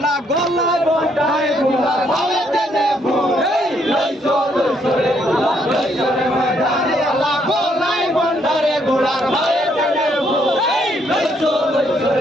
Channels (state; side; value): normal; both; correlation 0.71